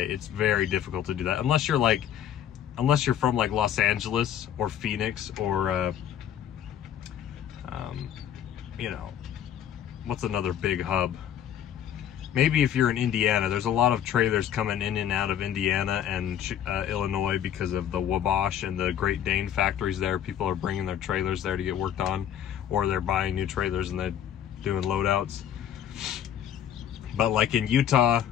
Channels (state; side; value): quieter; right; 10.1 dB